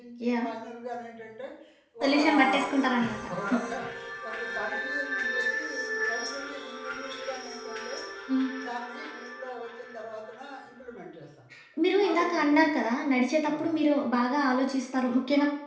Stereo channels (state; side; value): identical; both; correlation 1.00